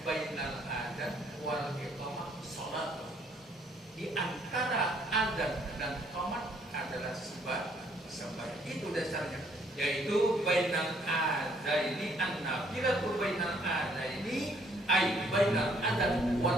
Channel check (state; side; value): normal; both; correlation 0.65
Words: bainal adzan wal iqamah salat. Di antara adzan dan iqamah adalah sembahyang. Itu dasarnya. Yaitu bainal adzan ini an-nafilatu bainal adzan ini ay bainal adzan